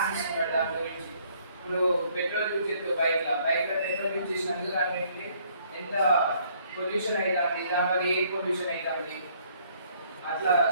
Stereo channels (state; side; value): inverted; both; correlation -0.63